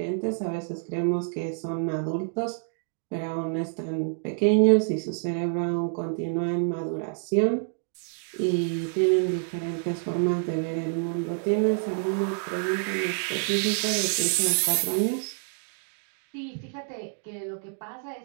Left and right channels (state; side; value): silent; left; 60 dB below the other